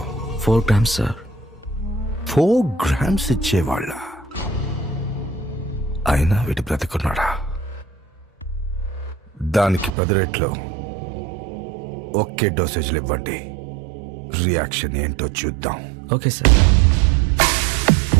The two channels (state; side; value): drops out; left; at 10.0 s